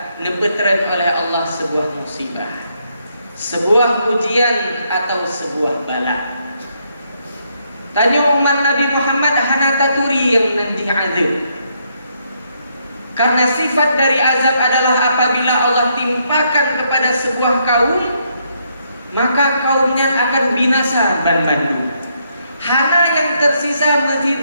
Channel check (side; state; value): both; inverted; correlation -0.75